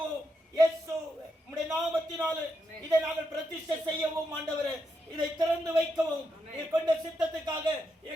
இயேசு உம்முடைய நாமத்தினாலே இதை நாங்கள் பிரதிஷ்டை செய்யவும் ஆண்டவரே, இதை திறந்து வைக்கவும் நீர் கொண்ட சித்தத்துக்காக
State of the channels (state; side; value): normal; both; correlation 0.83